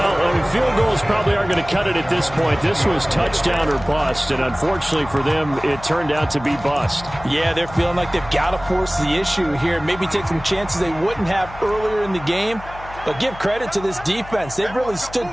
field goals probably aren't going to cut it at this point. This was touchdown or bust, and unfortunately for them, it turned out to be bust. Yeah, they're feeling like they've got to force the issue here, maybe take some chances they wouldn't have earlier in the game. But give credit to this defense. They've really stood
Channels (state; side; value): noise; left; hum, 16 dB below the sound